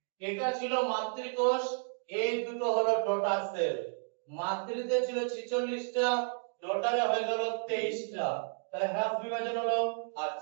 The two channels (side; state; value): left; silent; digital silence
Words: এটা ছিল মাতৃকোষ, এই দুটো হলো ডটার সেল। মাতৃতে ছিল 46টা, ডটারে হয়ে গেল 23টা, তাহলে হাফ বিভাজন হলো।